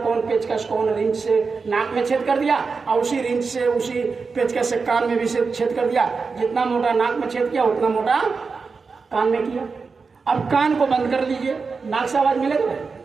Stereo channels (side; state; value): left; quieter; 4.7 dB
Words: कौन पेचकस, कौन रिंच से नाक में छेद कर दिया, और उसी रिंच से, उसी पेचकस से कान में भी छेद कर दिया। जितना मोटा नाक में छेद किया उतना मोटा कान में किया। अब कान को बंद कर लीजिए, नाक से आवाज मिलेगा भाई?